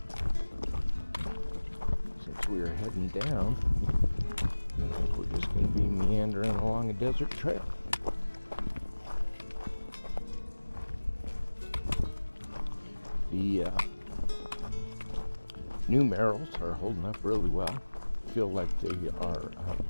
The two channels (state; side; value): inverted; both; correlation -1.00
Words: since we are heading down, I think we're just going to be meandering along a desert trail. The new Merrills are holding up really well. I feel like they are